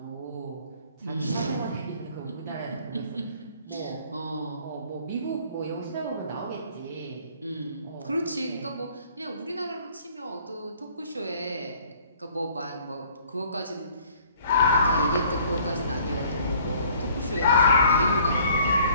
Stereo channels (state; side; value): inverted; both; correlation -0.56